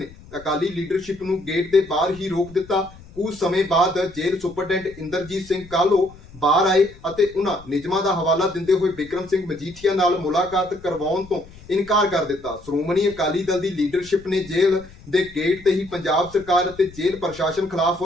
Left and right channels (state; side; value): noise; left; rumble, 21 dB below the sound